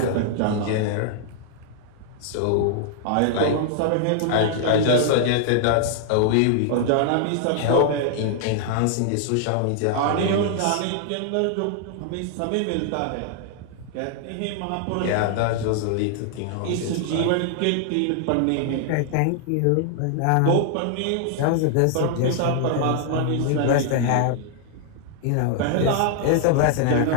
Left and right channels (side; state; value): both; different; correlation 0.00